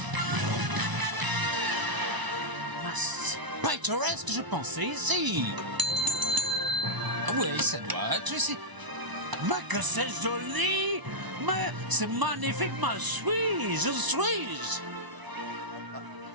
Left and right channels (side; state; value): left; late; 1.0 ms